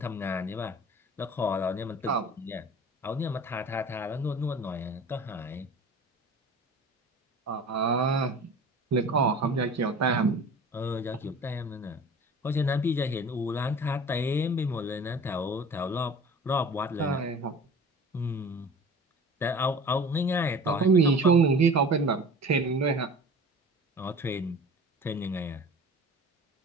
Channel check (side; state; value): both; normal; correlation 0.41